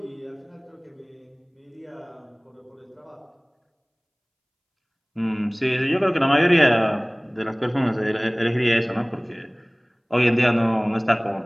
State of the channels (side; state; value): both; identical; correlation 1.00